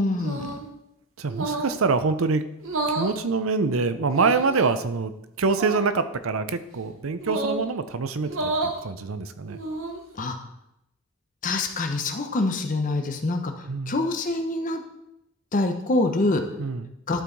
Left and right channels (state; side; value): normal; both; correlation 0.16